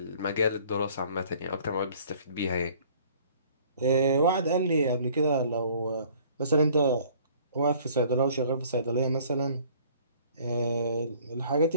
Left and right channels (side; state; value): both; inverted; correlation -0.54